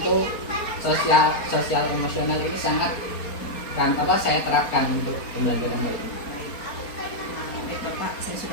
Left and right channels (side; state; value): right; late; 4.3 ms